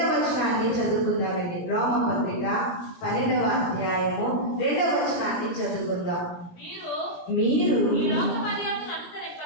వచనాన్ని చదువుకుందామండి. రోమపత్రిక 12వ అధ్యాయము 2వ వచనాన్ని చదువుకుందాం. మీరు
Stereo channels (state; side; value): late; right; 17 ms